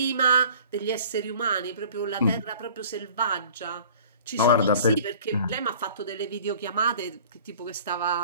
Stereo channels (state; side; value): inverted; both; correlation -0.48